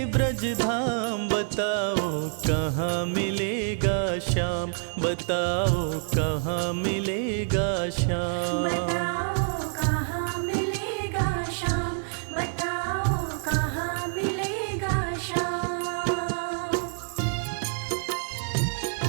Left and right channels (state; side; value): silent; left; 60 dB below the other